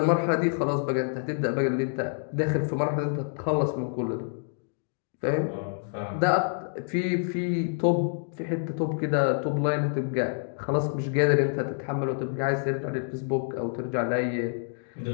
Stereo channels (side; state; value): right; silent; digital silence